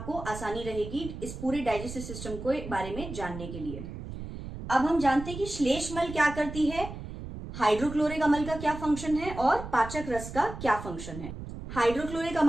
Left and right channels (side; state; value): right; noise; rumble, 10 dB below the sound